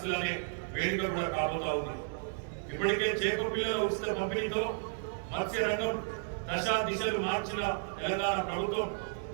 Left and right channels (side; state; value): left; silent; 56 dB below the other